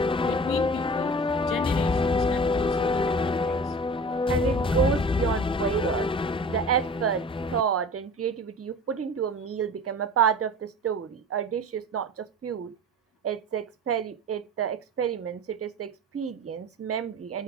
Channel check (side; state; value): both; normal; correlation 0.39